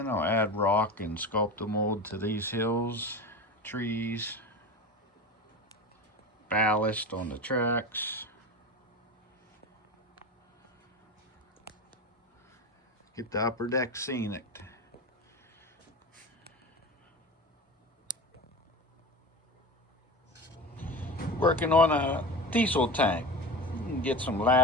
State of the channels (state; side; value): normal; both; correlation 0.28